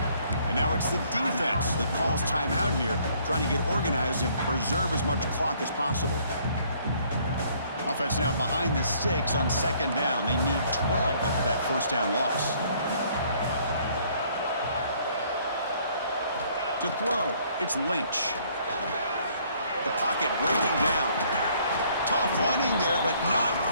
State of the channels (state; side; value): inverted; both; correlation -0.62